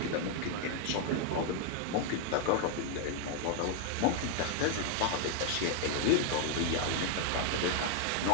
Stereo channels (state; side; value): different; both; correlation 0.00